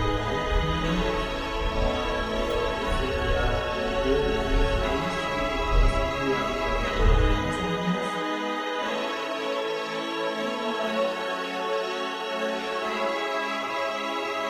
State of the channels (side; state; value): both; identical; correlation 1.00